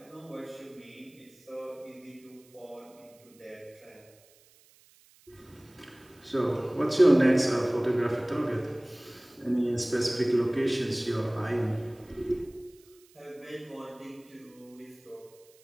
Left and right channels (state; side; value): noise; right; hiss, 29 dB below the sound